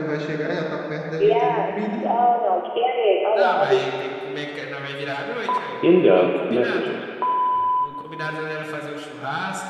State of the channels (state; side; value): identical; both; correlation 1.00